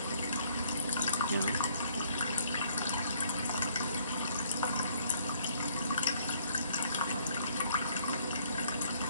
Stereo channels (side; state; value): both; inverted; correlation -0.65